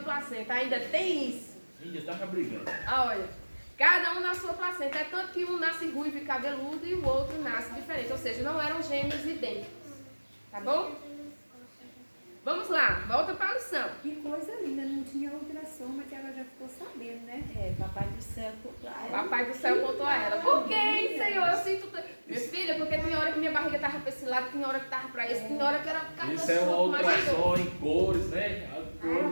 Ainda tem isso. Ainda estava brigando. Olha. Cada um na sua placenta. É tanto que um nasce ruivo e cabeludo e o outro nasce diferente. Ou seja, não eram gêmeos idênticos. Tá bom? Vamos lá, volta para a lição. Que coisa linda, não tinha ultrassom, mas ela já ficou sabendo, né? É, Papai do Céu contou a ela. Papai do Céu contou a ela. Por que, Senhor? Eu sinto... Minha filha, porque tem hora que minha barriga estava para esse lado, tem hora que estava para esse, tem hora que era... Isso é uma ultrassom em cores, né? As Ah, eu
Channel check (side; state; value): both; inverted; correlation -1.00